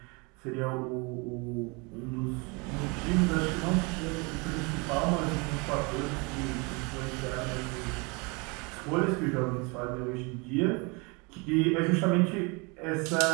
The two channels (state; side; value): quieter; left; 29.7 dB